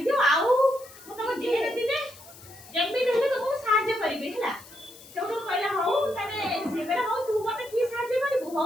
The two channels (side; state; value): left; noise; hiss, 20 dB below the sound